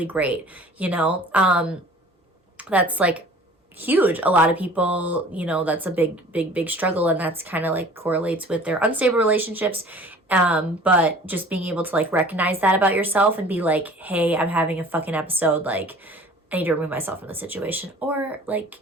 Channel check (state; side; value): normal; both; correlation 0.47